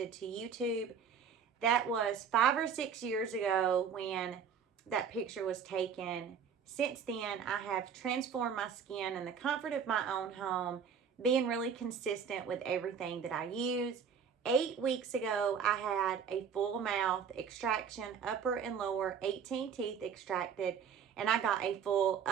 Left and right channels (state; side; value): quieter; left; 7.0 dB